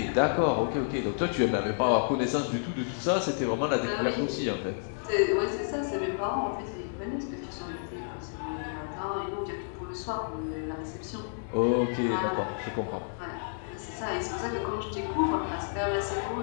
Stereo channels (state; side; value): silent; right; digital silence